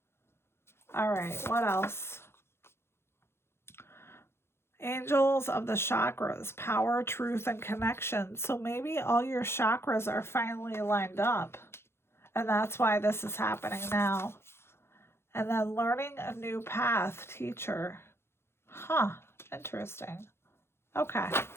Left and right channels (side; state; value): right; late; 0.12 ms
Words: All right, what else? Angels of the chakras, power, truth, and connection. So maybe all your chakras are finally lined up. And that's why this is happening now. And then learning a new path, teacher. Huh, interesting. Okay.